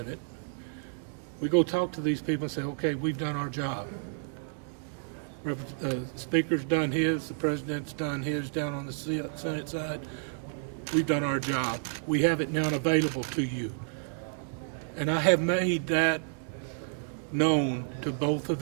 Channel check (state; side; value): silent; left; digital silence